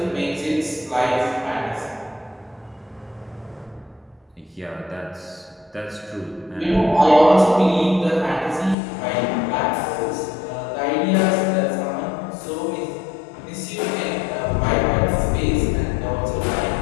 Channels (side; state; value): right; drops out; at 8.8 s